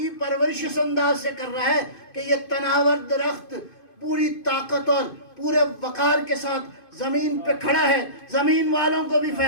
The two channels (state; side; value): late; right; 2.5 ms